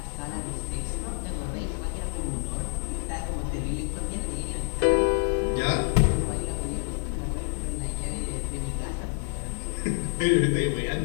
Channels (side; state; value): right; silent; digital silence